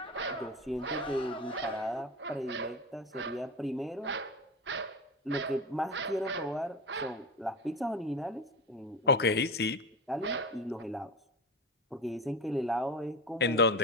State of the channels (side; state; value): both; normal; correlation 0.26